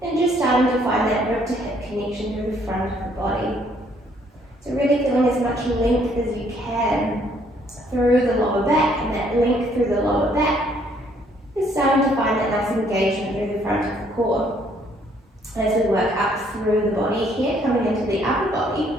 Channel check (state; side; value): normal; both; correlation 0.65